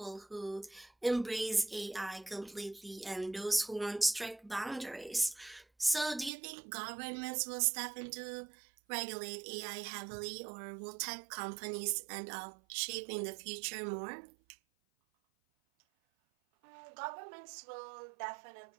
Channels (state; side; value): drops out; left; at 6.3 s